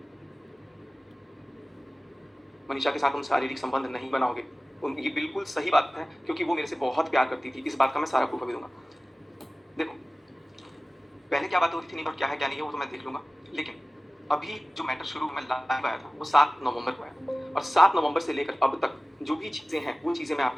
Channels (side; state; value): both; normal; correlation 0.97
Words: मनीषा के साथ तुम शारीरिक संबंध नहीं बनाओगे। ये बिल्कुल सही बात है क्योंकि वो मेरे से बहुत प्यार करती थी, इस बात का मैं सारा प्रूफ अभी दूँगा। देखो, पहले क्या बातें हो रही थी नहीं और क्या है क्या नहीं है वो तो मैं देख लूँगा। लेकिन अभी जो मैटर शुरू में लाइव आया था वो 7 नवंबर को आया और 7 नवंबर से लेकर अब तक जो भी चीज़ें हैं वो चीज़ें मैं